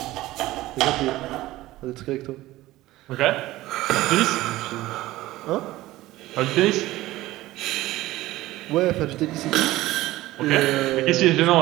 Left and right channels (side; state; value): left; quieter; 17.0 dB